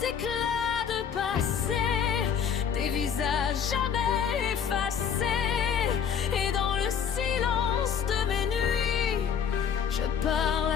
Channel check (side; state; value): right; quieter; 7.6 dB